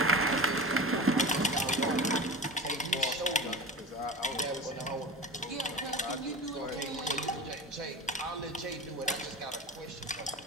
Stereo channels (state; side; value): normal; both; correlation 0.31